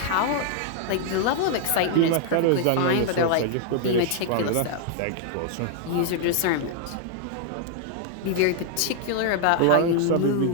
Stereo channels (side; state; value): both; different; correlation 0.00